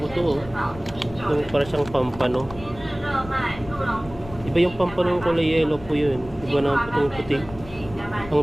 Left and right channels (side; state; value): left; noise; rumble, 16 dB below the sound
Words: to. Yung para siyang pampano. Iba yung pampano yung kulay yellow po yun. Iba naman po itong puti.